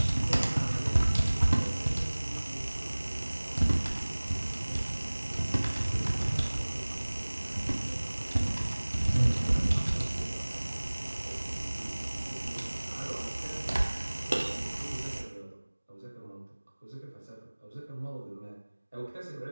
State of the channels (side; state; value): both; inverted; correlation -1.00